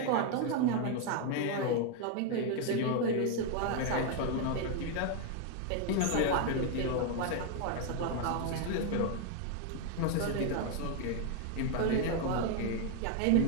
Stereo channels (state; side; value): different; both; correlation 0.01